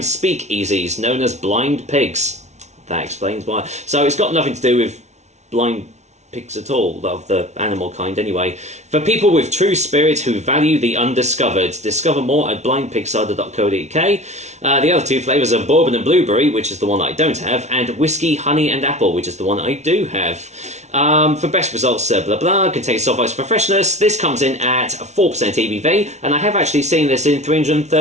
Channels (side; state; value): left; late; 0.32 ms